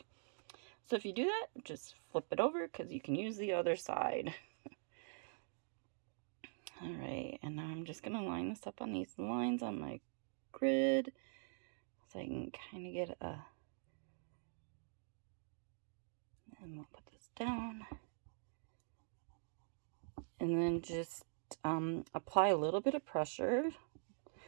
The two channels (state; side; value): silent; left; digital silence